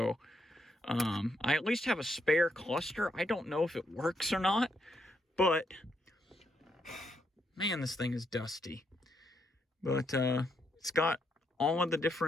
I at least have a spare cluster. I don't know if it works or not, but man, this thing is dusty. But it's got all of the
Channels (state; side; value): normal; both; correlation 0.77